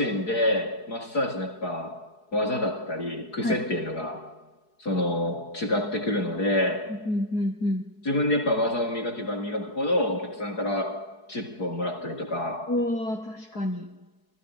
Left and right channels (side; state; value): right; late; 4.7 ms